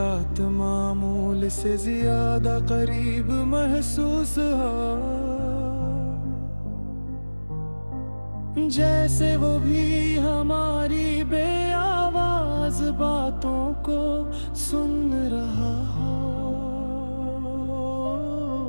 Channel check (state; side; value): inverted; both; correlation -1.00